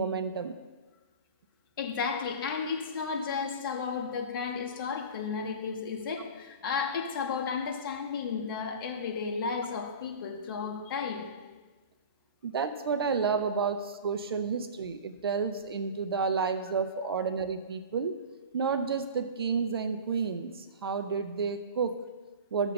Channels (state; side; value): inverted; both; correlation -0.34